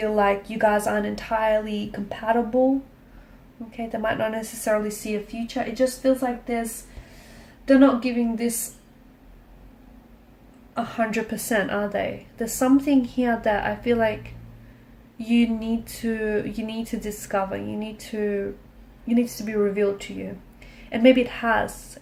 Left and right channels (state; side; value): identical; both; correlation 1.00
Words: like you guys aren't entirely compatible. Okay, they might not necessarily see a future. It just feels like they're not giving this 100%, are they? There's something here that I feel like you need to discover. You need to be revealed to you. And maybe it has,